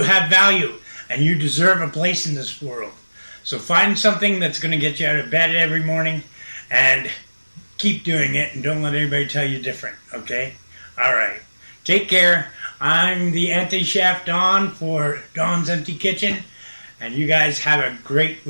have value, and you deserve a place in this world. So find something that's going to get you out of bed every morning and keep doing it, and don't let anybody tell you different. Okay? All right. Take care. I'm the anti-chef Don for Don's Empty Kitchen. And you guys have a great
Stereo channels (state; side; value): inverted; both; correlation -1.00